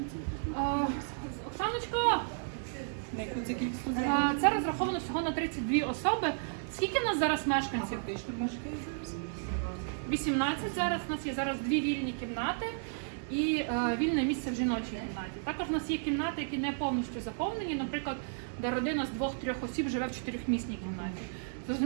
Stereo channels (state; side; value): silent; left; 56 dB below the other